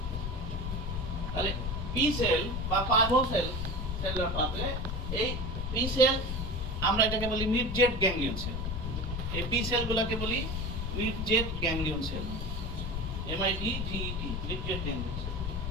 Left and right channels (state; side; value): noise; left; rumble, 4 dB below the sound